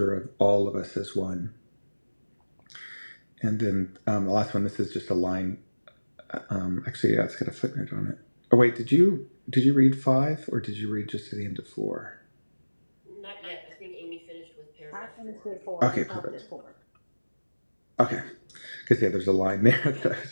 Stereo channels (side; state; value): both; inverted; correlation -1.00